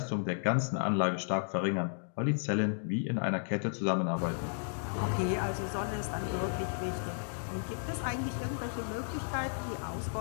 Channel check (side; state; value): right; silent; digital silence